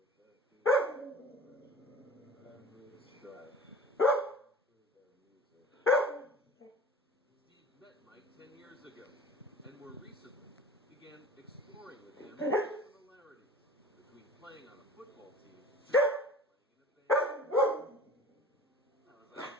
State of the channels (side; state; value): both; normal; correlation 0.42